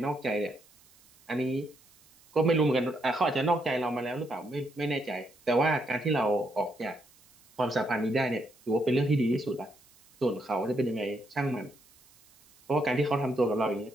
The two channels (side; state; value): right; noise; hiss, 28 dB below the sound